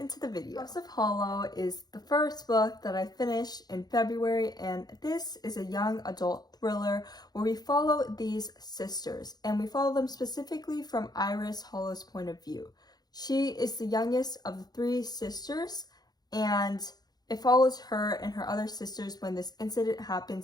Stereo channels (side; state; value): right; late; 0.19 ms